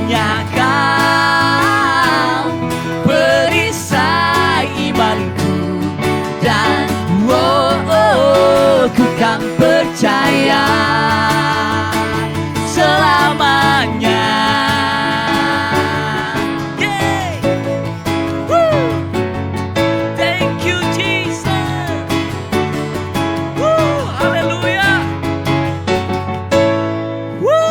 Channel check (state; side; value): identical; both; correlation 1.00